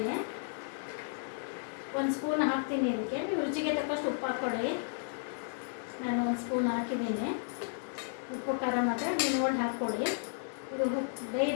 1 ಸ್ಪೂನ್ ಹಾಕ್ತೀನಿ ಇದಕ್ಕೆ. ನೀವು ರುಚಿಗೆ ತಕ್ಕಷ್ಟು ಉಪ್ಪು ಹಾಕ್ಕೊಳ್ಳಿ. ನಾನು 1 ಸ್ಪೂನ್ ಹಾಕಿದ್ದೀನಿ. ಉಪ್ಪು ಖಾರ ಮಾತ್ರ ನೀವು ನೋಡಿ ಹಾಕ್ಕೊಳ್ಳಿ. ಇದು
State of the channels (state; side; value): silent; right; 55 dB below the other